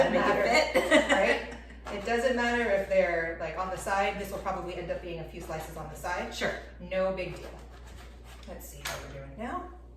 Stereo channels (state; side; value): identical; both; correlation 1.00